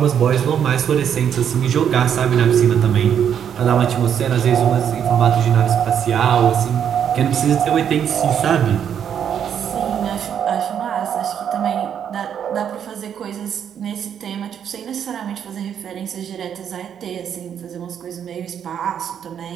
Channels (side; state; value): left; quieter; 8.7 dB